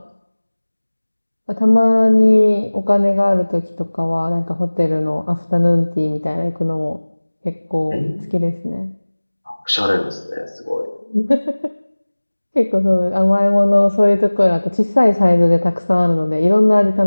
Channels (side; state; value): both; inverted; correlation -1.00